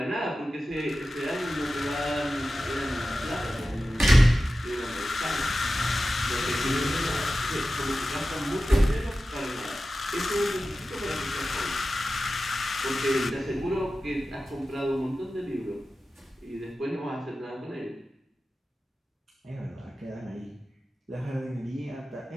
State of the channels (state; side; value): normal; both; correlation 0.94